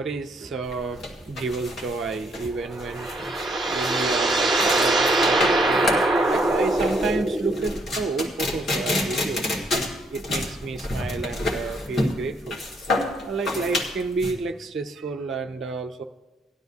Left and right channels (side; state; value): both; normal; correlation 0.70